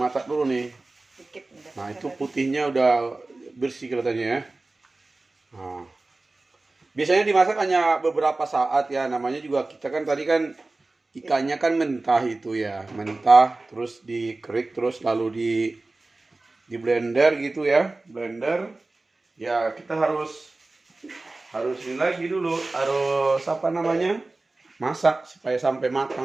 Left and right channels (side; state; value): left; quieter; 3.2 dB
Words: dulu nih. Dikit udah. Nah, itu putihnya udah bersih kelihatannya ya. Nah, biasanya dimasak hanya beberapa saat ya. Namanya juga kita kan tadi kan ikannya kan mentah itu ya. Mentah terus dikerik terus lalu di blender gitu ya. Blender. Ya, kita harus ini lagi dulu. Harus apa namanya? Masak supaya sampai